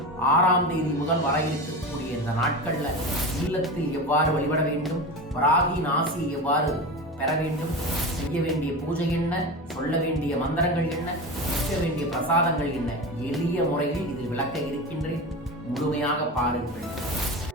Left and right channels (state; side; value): normal; both; correlation 0.25